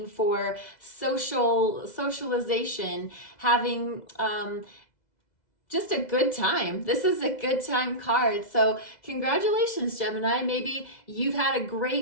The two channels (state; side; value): late; right; 2.0 ms